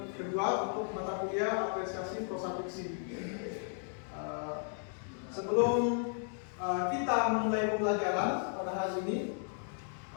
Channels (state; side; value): silent; right; 55 dB below the other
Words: kedua untuk mata kuliah apresiasi prosa fiksi. Sebelum kita memulai pembelajaran pada hari ini,